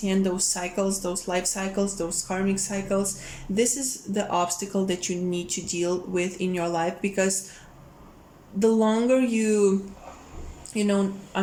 those cycles, those life cycles, those karmic cycles. This is the obstacle that you need to deal with in your life, because the longer you know are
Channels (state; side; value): identical; both; correlation 1.00